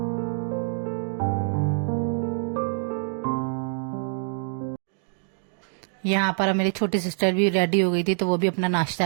यहाँ पर मेरी छोटी सिस्टर भी रेडी हो गई थी, तो वो भी अपना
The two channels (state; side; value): silent; left; 59 dB below the other